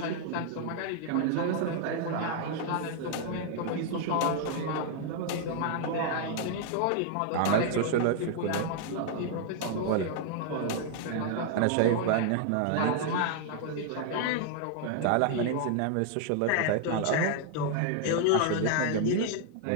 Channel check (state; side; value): different; both; correlation 0.00